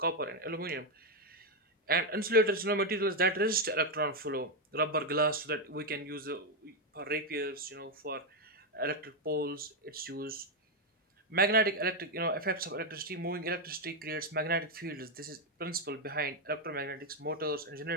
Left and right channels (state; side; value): normal; both; correlation 0.04